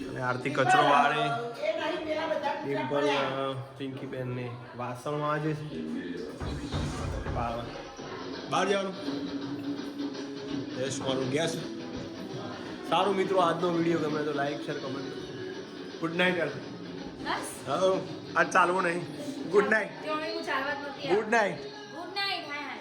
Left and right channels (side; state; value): both; identical; correlation 1.00